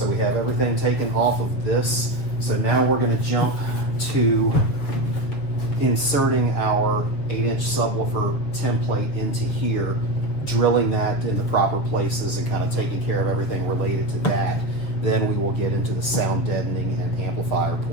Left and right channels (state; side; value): late; right; 7.0 ms